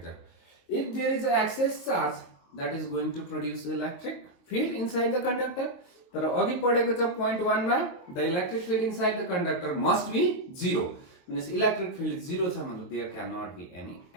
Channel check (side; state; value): right; late; 22 ms